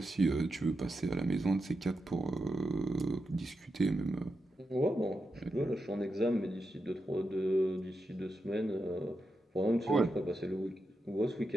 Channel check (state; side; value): normal; both; correlation 0.87